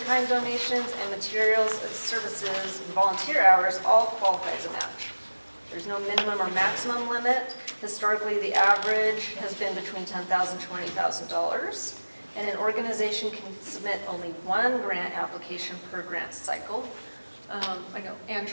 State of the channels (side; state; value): both; inverted; correlation -1.00